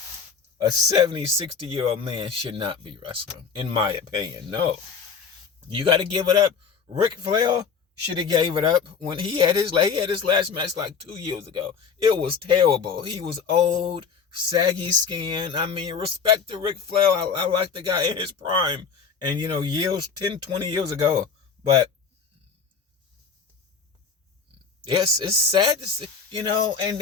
A 70, 60-year-old man should not be wrestling, in my opinion. No. You got to give it up. Ric Flair should have gave it up when he had his last match like 2 years ago. It was terrible. He was old, saggy skin. I mean, respect to Ric Flair. I like the guy in his prime. And, years, 10, 20 years ago. But it's sad to see, and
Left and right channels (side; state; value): right; quieter; 5.9 dB